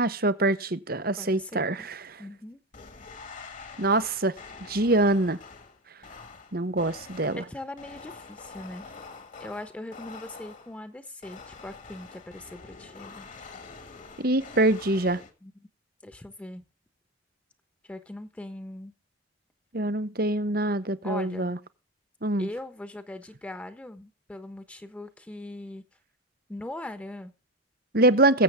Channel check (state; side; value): normal; both; correlation 0.21